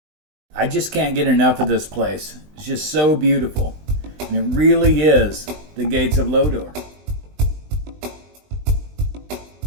I just can't get enough of this place. It's just so beautiful. And it really is the gates of Lodore.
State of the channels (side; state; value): left; late; 20 ms